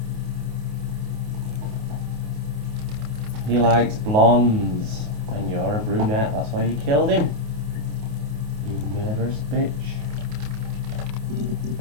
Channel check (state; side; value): late; left; 28 ms